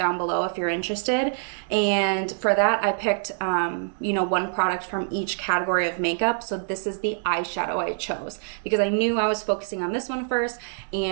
below if you're interested. And for that, I picked, you know, one product from each category of makeup. So this is the eyeshadow I chose because I knew I was focusing on this one first,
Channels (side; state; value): left; silent; digital silence